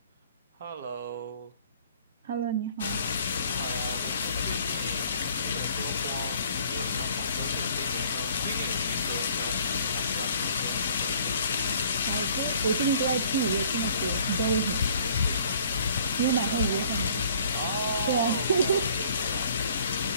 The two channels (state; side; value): inverted; both; correlation -0.56